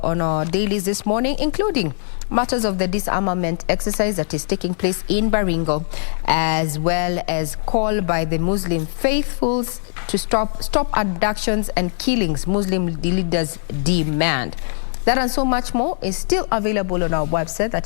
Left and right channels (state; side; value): silent; right; 62 dB below the other